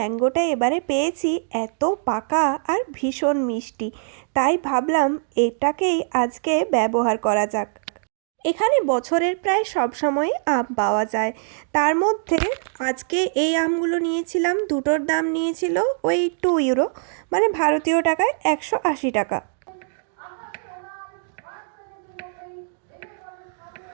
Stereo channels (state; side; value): silent; left; digital silence